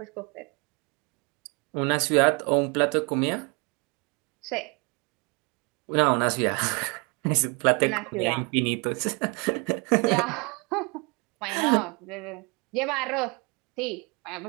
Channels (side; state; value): left; quieter; 31.1 dB